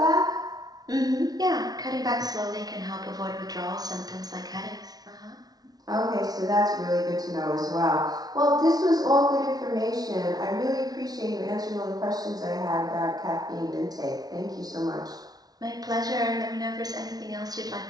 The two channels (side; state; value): left; late; 0.19 ms